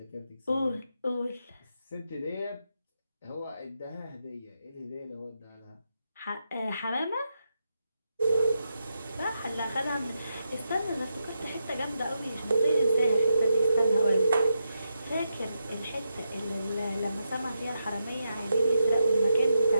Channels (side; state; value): both; inverted; correlation -0.84